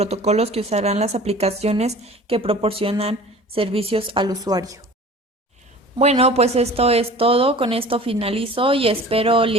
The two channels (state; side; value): normal; both; correlation 0.43